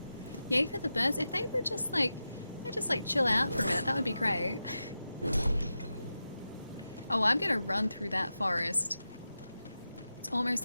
Yay for the birds. If they were just like, they just like chill out for a minute, that would be great. Oh, I'm gonna run through that forest. It's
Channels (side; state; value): both; inverted; correlation -0.92